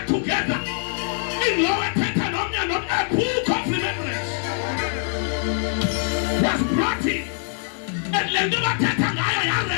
together in lower Tetanomian, a book of remembrance was brought in, and Lenduba Tetangaya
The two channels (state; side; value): silent; right; 63 dB below the other